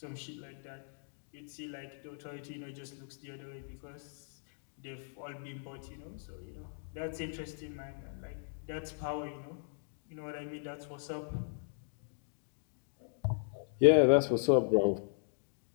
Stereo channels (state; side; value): silent; right; digital silence